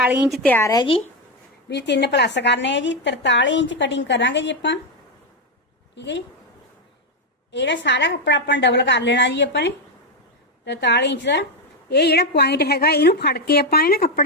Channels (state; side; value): normal; both; correlation 0.06